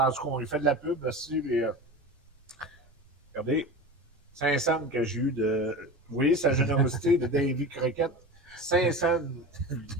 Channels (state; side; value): normal; both; correlation 0.29